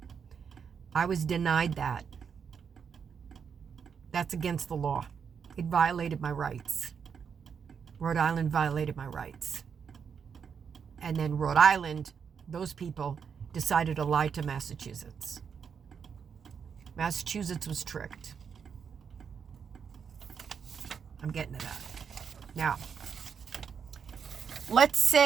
I was denied that. That's against the law. It violated my rights. Rhode Island violated my rights. And then Rhode Island, those people decided to lie to Massachusetts. Massachusetts was tricked. I'm getting to that. Now, let's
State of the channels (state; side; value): quieter; left; 6.8 dB